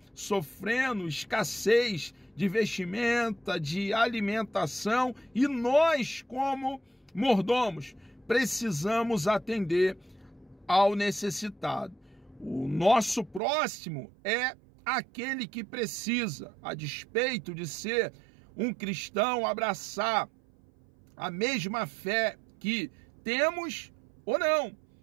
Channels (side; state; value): left; drops out; at 13.4 s